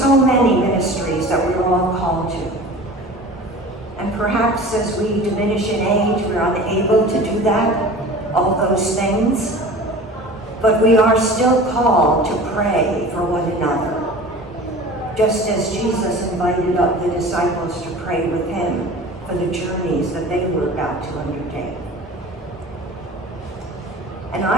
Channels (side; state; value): both; normal; correlation 0.39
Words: many ministries that we're all called to. And perhaps as we diminish in age, we're unable to do that, all those things. But we are still called to pray for one another, just as Jesus invited up the disciples to pray with him for the journeys that they were about to undertake. And